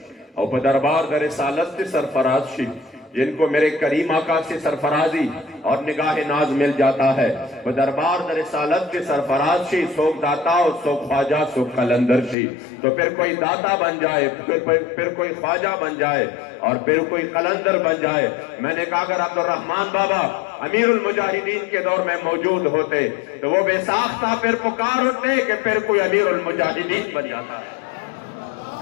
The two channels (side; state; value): right; drops out; at 12.4 s